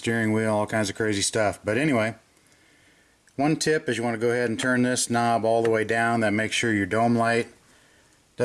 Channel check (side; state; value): both; identical; correlation 1.00